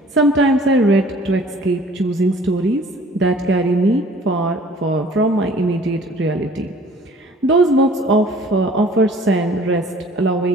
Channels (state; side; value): normal; both; correlation 0.51